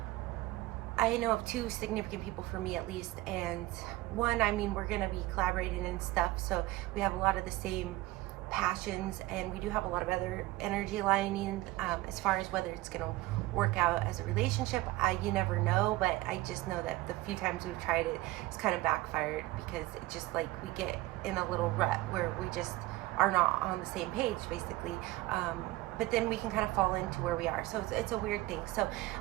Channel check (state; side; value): quieter; left; 18.8 dB